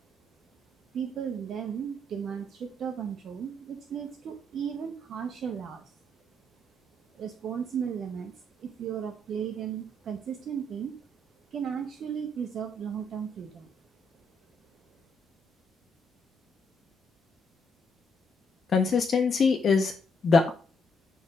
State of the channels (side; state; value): both; normal; correlation 0.73